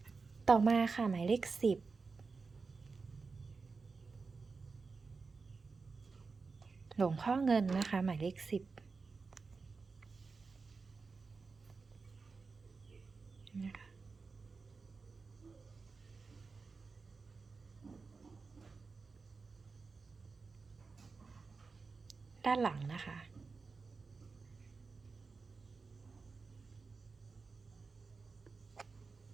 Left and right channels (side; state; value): left; quieter; 4.5 dB